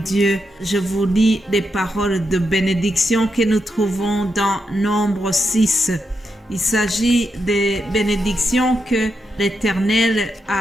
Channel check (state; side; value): normal; both; correlation 0.84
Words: Je vous lis les paroles de bénédiction que nous trouvons dans Nombre 6. Il s'agit des bénédictions que l'Éternel